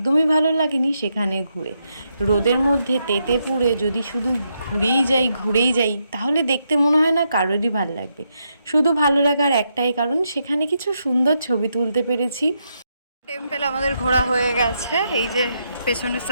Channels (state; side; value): inverted; both; correlation -0.81